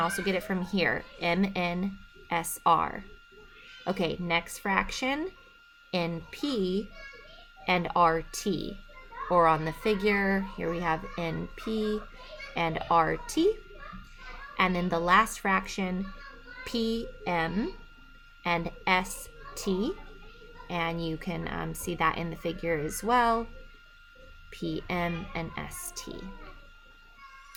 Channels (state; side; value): identical; both; correlation 1.00